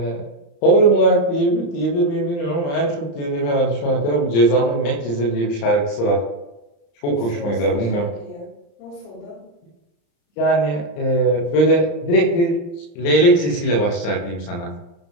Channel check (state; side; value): late; right; 35 ms